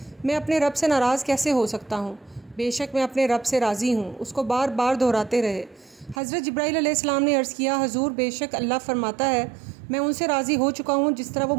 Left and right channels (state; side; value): drops out; left; at 6.2 s